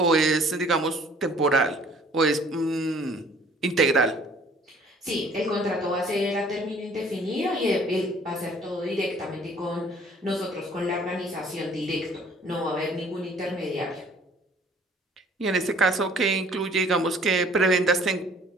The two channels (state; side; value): normal; both; correlation 0.55